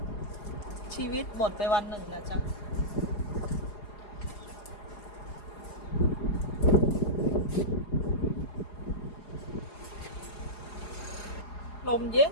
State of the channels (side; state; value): right; late; 4.8 ms